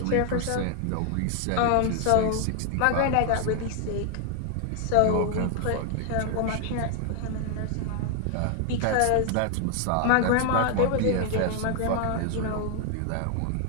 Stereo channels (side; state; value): both; different; correlation 0.00